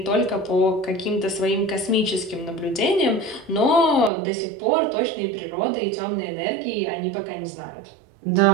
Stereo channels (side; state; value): left; drops out; at 4.1 s